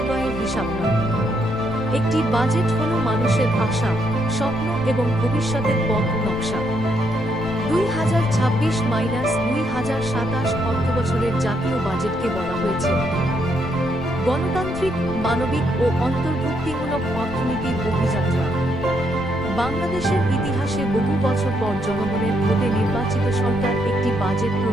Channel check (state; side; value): noise; left; rumble, 13 dB below the sound